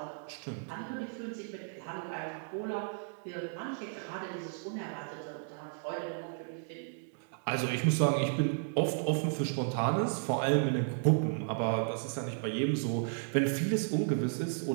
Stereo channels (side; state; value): left; silent; digital silence